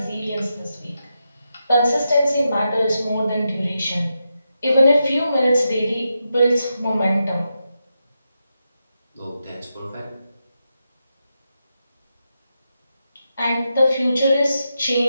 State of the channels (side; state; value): both; inverted; correlation -0.87